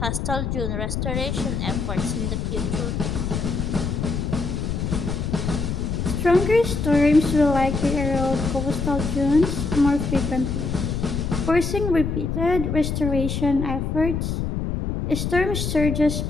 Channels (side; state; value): left; noise; rumble, 2 dB below the sound